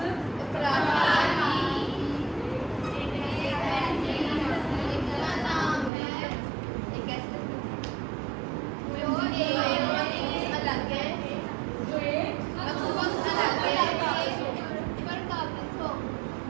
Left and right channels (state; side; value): drops out; left; at 5.9 s